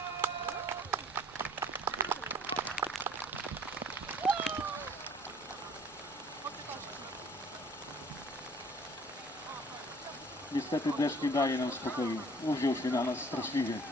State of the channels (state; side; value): normal; both; correlation 0.54